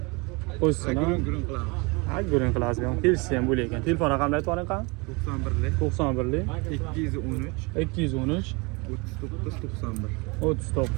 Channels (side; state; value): left; quieter; 28.0 dB